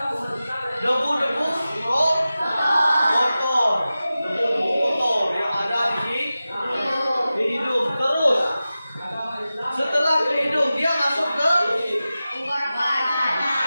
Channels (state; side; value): inverted; both; correlation -0.95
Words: debu-debu kotor yang ada di hidung. Terus setelah ke hidung dia masuk ke